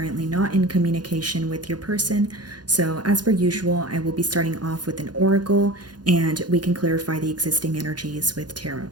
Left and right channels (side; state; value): left; late; 0.70 ms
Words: not in communication with your person. So, as per usual, I will be starting off with an oracle and we can clarify the existing energies with tarot.